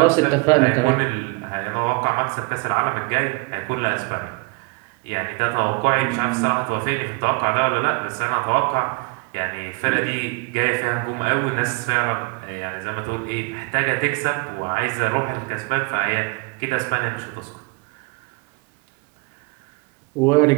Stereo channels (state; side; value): quieter; left; 30.1 dB